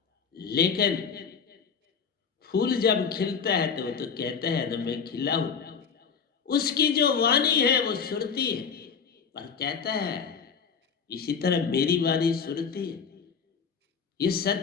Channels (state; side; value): quieter; right; 6.3 dB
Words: लेकिन फूल जब खिलता है तो वो तो कहता है ना मैं खिला हूं। उसकी जो वाणी है वो सुरती है, पर कहता है इसी तरह मेरी वाणी सुरती है। ये